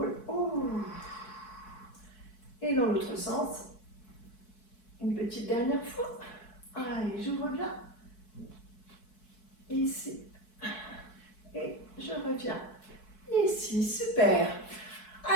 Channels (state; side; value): late; right; 4.6 ms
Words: Oh. Et dans l'autre sens, une petite dernière fois. Allez, j'ouvre bien. Ici. Et je reviens. Ici, super.